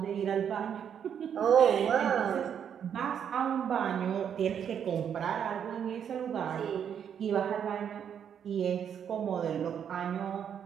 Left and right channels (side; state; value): left; quieter; 8.4 dB